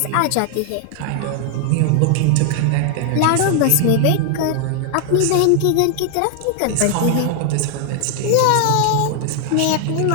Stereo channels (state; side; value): different; both; correlation 0.00